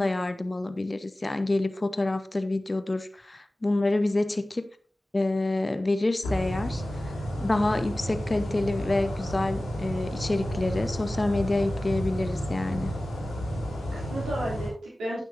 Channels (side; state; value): both; normal; correlation 0.96